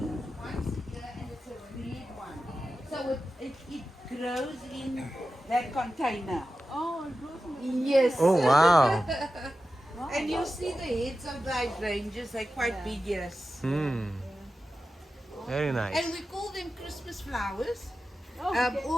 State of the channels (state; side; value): normal; both; correlation 0.92